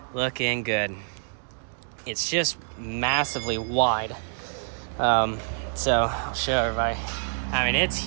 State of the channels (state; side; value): silent; left; digital silence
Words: Looking good. It's just massively wide. So I'll show everybody. I mean, it's